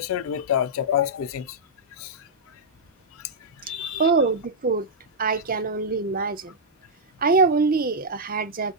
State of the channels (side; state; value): both; normal; correlation -0.08